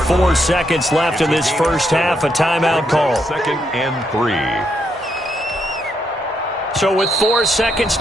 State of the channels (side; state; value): both; normal; correlation 0.78